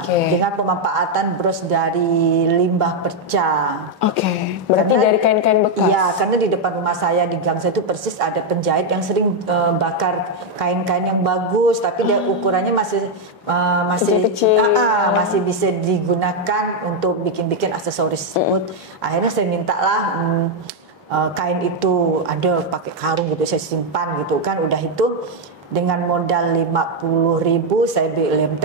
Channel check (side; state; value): both; normal; correlation 0.02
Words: dengan pemanfaatan bros dari limbah perca. Berarti karena, dari kain-kain bekas? Iya, karena di depan rumah saya, di gang saya itu persis ada penjahit yang sering bakar kain-kain yang bagus, tapi dia ukurannya masih masih bisa digunakan untuk bikin-bikin aksesoris tersebut. Akhirnya saya mintalah kain itu, ada pakai karung gitu, saya simpan gitu kan. Udah itu dengan modal 50.000 saya beli lem